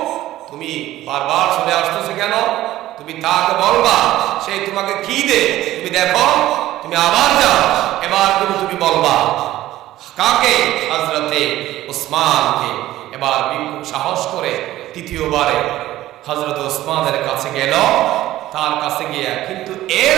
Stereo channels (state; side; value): quieter; left; 14.9 dB